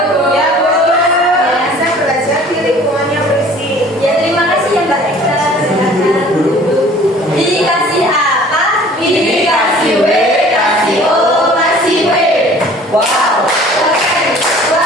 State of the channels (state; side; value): normal; both; correlation 0.50